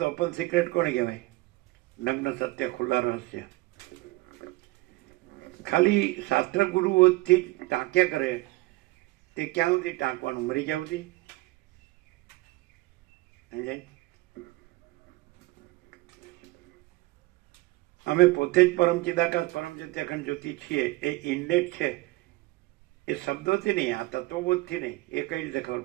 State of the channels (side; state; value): left; quieter; 20.9 dB